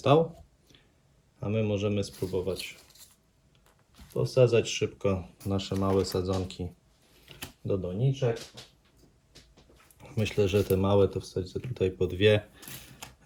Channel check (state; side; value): identical; both; correlation 1.00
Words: A my możemy spróbować posadzać szybko nasze małe sadzonki do doniczek. Myślę, że te małe to wsadzę tutaj po 2,